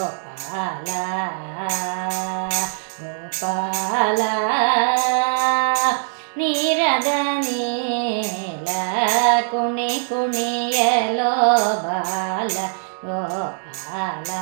ಗೋಪಾಲ, ನೀರದ ನೀಲ ಕುಣಿ ಕುಣಿಯಲೋ ಬಾಲ ಗೋಪಾಲ.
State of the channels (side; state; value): left; silent; digital silence